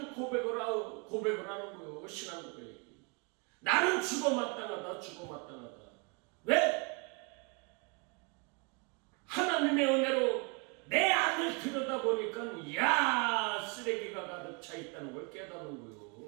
고백을 하는 거예요. 신앙 고백. 나는 죽어 마땅하다. 왜? 하나님의 은혜로 내 안을 들여다보니 있다는 걸 깨닫는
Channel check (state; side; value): quieter; left; 32.4 dB